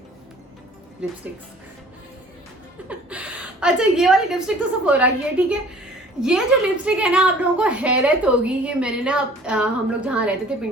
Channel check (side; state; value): both; normal; correlation 0.51